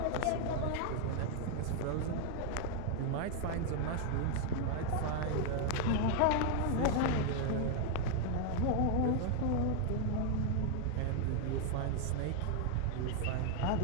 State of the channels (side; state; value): both; different; correlation 0.00